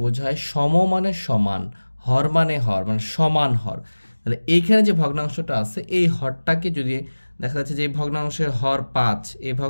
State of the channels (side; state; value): both; inverted; correlation -1.00